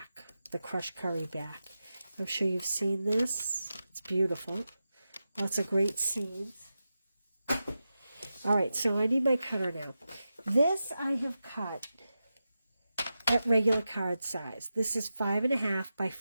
The Crushed Curry back. I'm sure you've seen this. It's beautiful. Lots of great scenes. All right, so I need my cutter now. This I have cut at regular card size. This is 5.5 by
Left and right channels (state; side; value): inverted; both; correlation -0.91